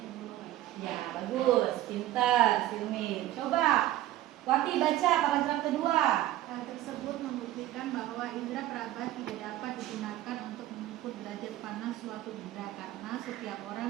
pegunungan. Ya, bagus. Pintar, Silmi. Coba Wati baca paragraf kedua. Hal tersebut membuktikan bahwa indera peraba tidak dapat digunakan untuk mengukur derajat panas suatu benda karena setiap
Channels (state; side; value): quieter; left; 14.4 dB